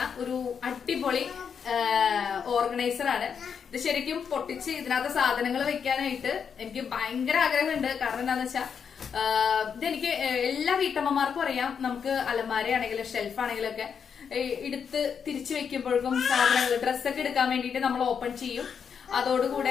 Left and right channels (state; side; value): quieter; right; 6.9 dB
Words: ഒരു അടിപൊളി ഓർഗനൈസർ ആണ്. ഇത് ശരിക്കും പൊട്ടിച്ച് ഇതിനകത്ത് സാധനങ്ങൾ വെക്കാനായിട്ട് എനിക്ക് ഭയങ്കര ആഗ്രഹമുണ്ട്. കാരണം എന്താണെന്ന് വെച്ചാൽ ഇതെനിക്ക് എല്ലാ വീട്ടമ്മമാർക്കും അറിയാം. നമുക്ക് അലമാരയാണെങ്കിലും ഷെൽഫാണെങ്കിലും ഒക്കെ എടുത്ത് തിരിച്ചു വെക്കുമ്പോഴേക്കും സാധനങ്ങൾ ഡ്രസ്സൊക്കെ എടുക്കാൻ വേണ്ടിയിട്ട് നമ്മൾ ഓപ്പൺ ചെയ്യും.